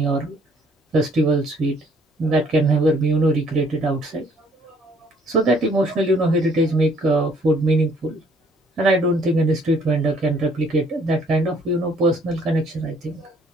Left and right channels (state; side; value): normal; both; correlation 0.62